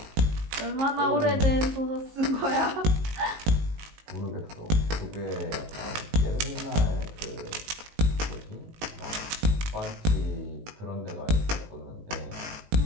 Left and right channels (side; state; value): left; late; 19 ms